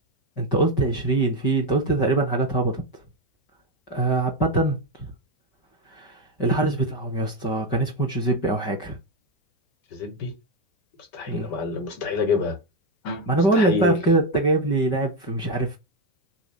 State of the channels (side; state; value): right; late; 5.2 ms